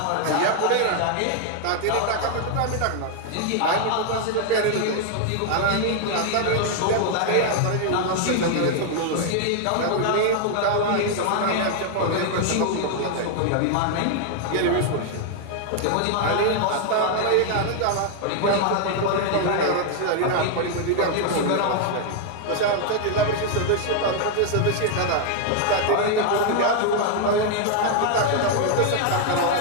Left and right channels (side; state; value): both; different; correlation 0.00